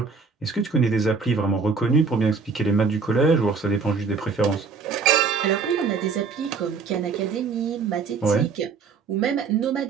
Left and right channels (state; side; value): quieter; left; 5.1 dB